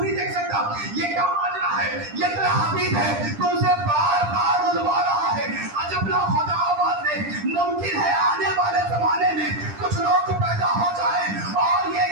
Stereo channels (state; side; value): late; left; 10 ms